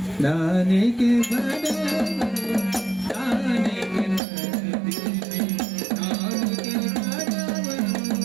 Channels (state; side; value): drops out; left; at 4.2 s